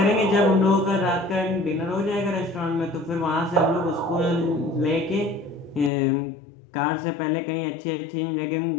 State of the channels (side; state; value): right; drops out; at 5.9 s